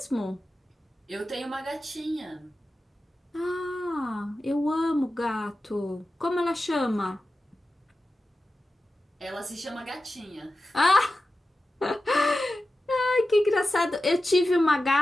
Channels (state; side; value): normal; both; correlation 0.93